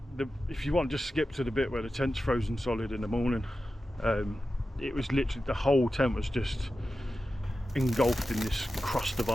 if you want, just skip to the bit where the tent's frozen solid in the morning. It was literally, the whole tent was just engulfed in this crust of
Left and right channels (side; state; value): both; normal; correlation 0.93